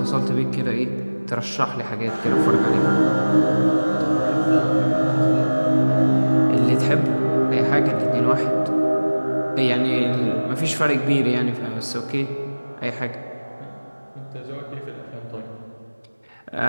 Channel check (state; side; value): inverted; both; correlation -1.00